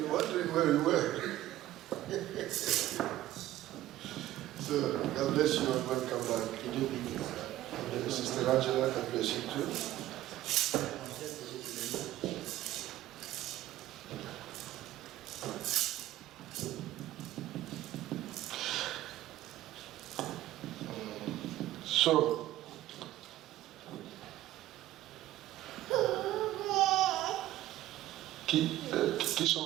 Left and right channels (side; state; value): left; quieter; 14.8 dB